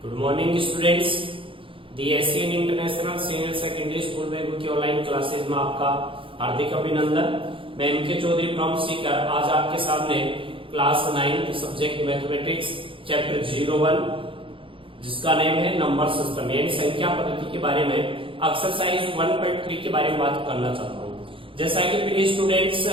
Good morning students, the Asian international senior secondary school में की online classes में आपका हार्दिक अभिनंदन। मैं एमके चौधरी फ्रॉम सीकर आज आपके सामने क्लास 9 सब्जेक्ट मैथमेटिक्स चैप्टर 01 जिसका नेम है नंबर सिस्टम यानी संख्या पद्धति के बारे में एक्सरसाइज 1.3 के बारे में बात करना चाहता हूँ। जैसा कि प्रिय स्टूडेंट्स,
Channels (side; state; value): left; late; 0.25 ms